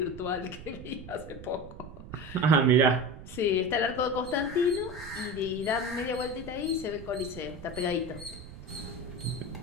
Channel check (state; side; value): noise; right; rumble, 14 dB below the sound